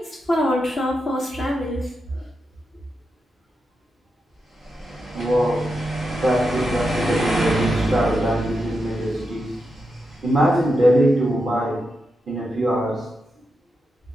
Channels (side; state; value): both; normal; correlation 0.87